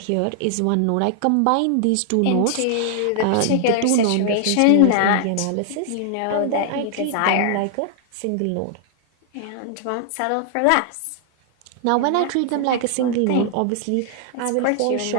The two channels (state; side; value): different; both; correlation 0.00